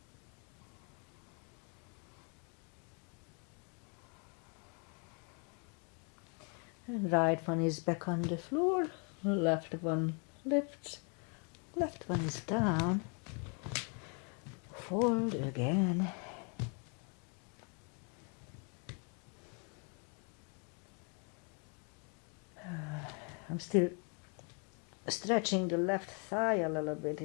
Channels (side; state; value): right; quieter; 37.6 dB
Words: And right one is back on the floor. Left one lifts, left one is down. Fold again. I'm still stretching the left thigh a little bit.